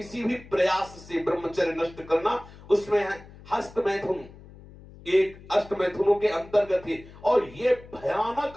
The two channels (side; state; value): left; noise; hum, 19 dB below the sound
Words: भी प्रयास से ब्रह्मचर्य नष्ट करना, उसमें हस्त मैथुन एक अष्ट मैथुनों के अंतर्गत है। और ये